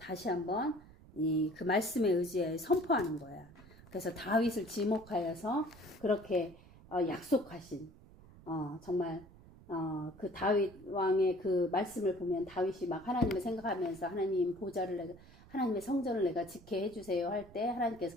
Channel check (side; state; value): right; noise; rumble, 21 dB below the sound